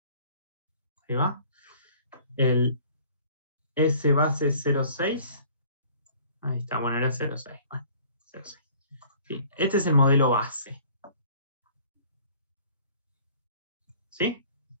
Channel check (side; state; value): both; inverted; correlation -0.52